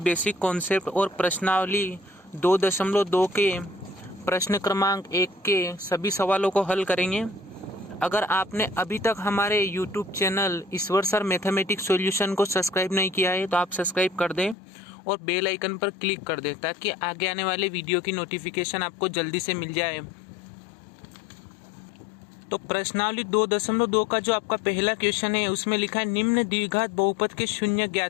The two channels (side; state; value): right; drops out; at 14.6 s